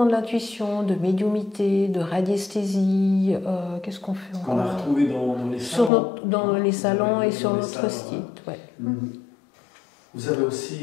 de l'intuition, de médiumité, de radiesthésie. Qu'est-ce qu'on fait encore? Qu'on a retrouvé dans les salons. Dans les salons et sur notre site. Ouais. Vous avez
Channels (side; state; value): right; drops out; at 5.9 s